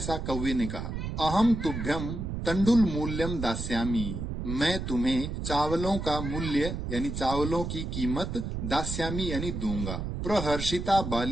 कौवे ने कहा। अहम तुभ्यम तंडुल मूल्यम दास्यामी, मैं तुम्हें चावलों का मूल्य यानी चावलों की कीमत, दास्यामी यानी दूंगा। प्रहर्षिता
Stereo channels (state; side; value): noise; right; rumble, 4 dB below the sound